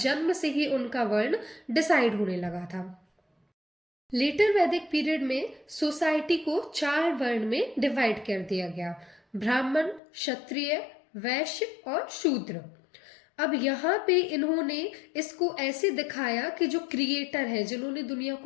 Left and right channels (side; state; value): right; drops out; at 10.0 s